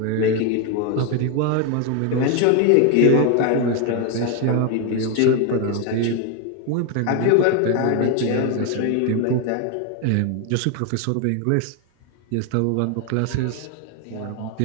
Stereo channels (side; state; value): both; different; correlation 0.01